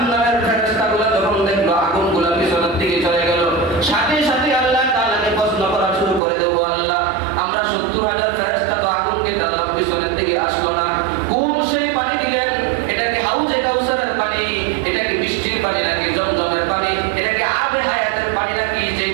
ফেরেশতাগুলো যখন দেখলো আগুনগুলো পিছনের দিকে চলে গেল, সাথে সাথে আল্লাহ তাআলাকে প্রশ্ন করা শুরু করে দেবো, আল্লাহ আমরা ৭০,০০০ ফেরেশতা তো আগুনকে টানলাম, পিছনের দিকে আসলো না, কোন সেই পানি দিলেন? এটা কি হাউজে কাউসারের পানি? এটা কি বৃষ্টির পানি নাকি জমজমের পানি? এটা কি আবে হায়াতের পানি নাকি যে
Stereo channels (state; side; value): drops out; left; at 6.2 s